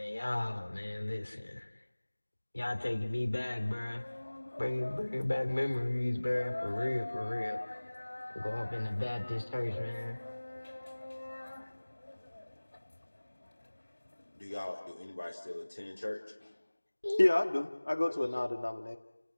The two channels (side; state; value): both; inverted; correlation -1.00